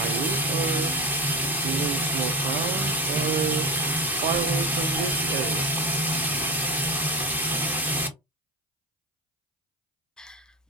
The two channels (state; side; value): normal; both; correlation 0.22